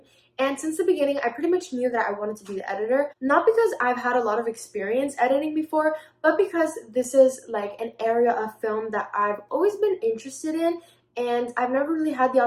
and since the beginning, I pretty much knew that I wanted to be the editor, not because I've had a lot of experience editing before, but because this is like an area of film that I've always been interested in, and I've never really had the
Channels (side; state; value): both; identical; correlation 1.00